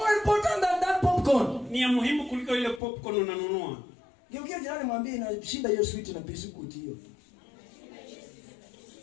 important than that popcorn. Ni ya muhimu kuliko ile popcorn unanunua. Geukia jirani mwambie inashinda hiyo sweet na biscuit hiyo.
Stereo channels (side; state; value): right; drops out; at 2.8 s